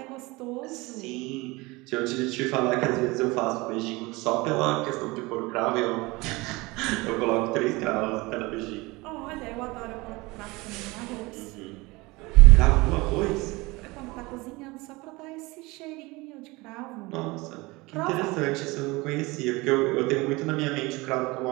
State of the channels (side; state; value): left; quieter; 23.2 dB